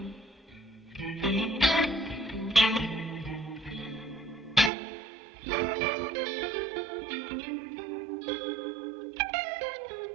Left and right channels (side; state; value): left; drops out; at 4.7 s